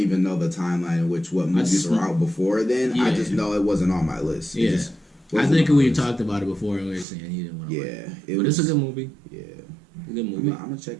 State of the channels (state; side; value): drops out; left; at 7.1 s